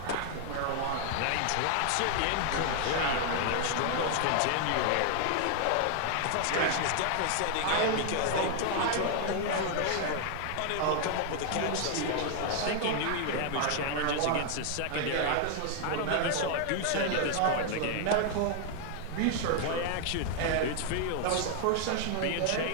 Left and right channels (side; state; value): both; different; correlation 0.00